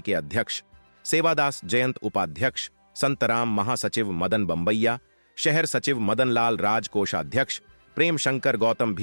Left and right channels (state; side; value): inverted; both; correlation -1.00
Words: के अध्यक्ष सेवादास जयंत, उपाध्यक्ष संतराम, महासचिव मदन बंबैया, शहर सचिव मदनलाल राज, कोषाध्यक्ष प्रेम शंकर गौतम,